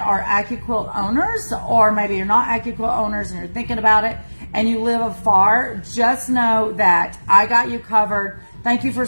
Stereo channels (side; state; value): both; inverted; correlation -1.00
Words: are AccuQuilt owners, or maybe you're not AccuQuilt owners and you're thinking about it and you live afar, just know that I got you covered. Thank you for